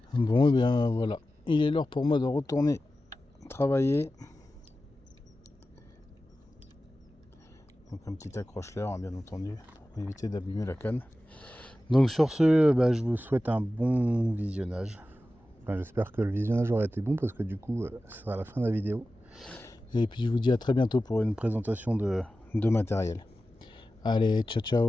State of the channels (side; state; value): both; normal; correlation 0.94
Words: Bon, et bien voilà, il est l'heure pour moi de retourner travailler. Donc un petit accroche-leurre, hein, bien entendu, pour éviter d'abîmer la canne. Donc sur ce, je vous souhaite un bon visionnage. Enfin, j'espère que le visionnage aura été bon parce que du coup, ce sera la fin de la vidéo. Et puis je vous dis à très bientôt pour une présentation de matériel. Allez, ciao